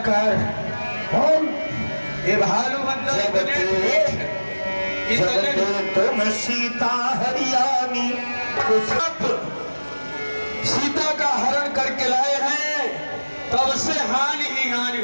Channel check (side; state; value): both; inverted; correlation -1.00